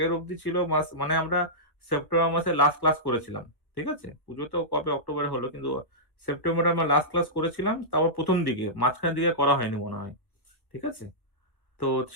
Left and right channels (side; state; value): right; late; 1.2 ms